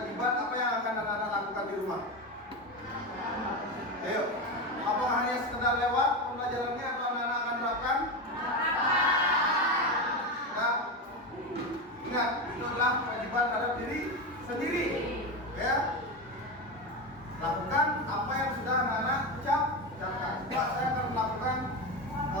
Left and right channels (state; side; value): normal; both; correlation 0.17